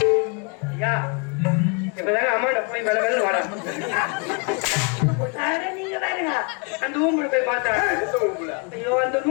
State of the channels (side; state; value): right; quieter; 33.5 dB